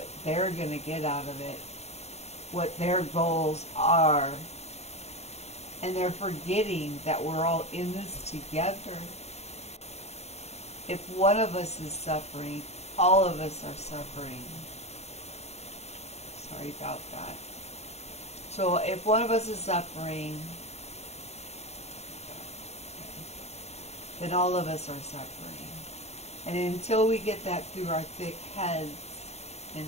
they're going to get out of it, what their goals are. And they're forgetting that we're all in this together. If one of us is suffering, all of us are suffering. Sorry about that. So if one of us is suffering, then all of us are suffering. And until we get that through our thick heads and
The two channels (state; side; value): late; right; 0.31 ms